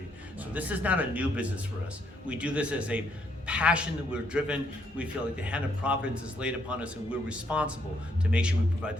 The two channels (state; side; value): normal; both; correlation 0.72